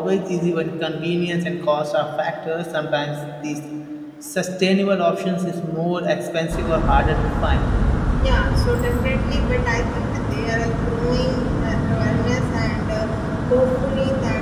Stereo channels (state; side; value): identical; both; correlation 1.00